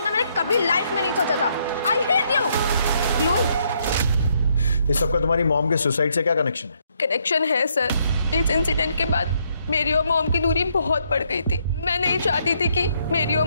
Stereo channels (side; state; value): both; inverted; correlation -0.72